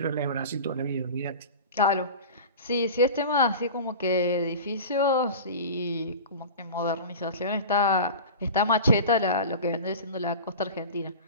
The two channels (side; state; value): both; inverted; correlation -0.33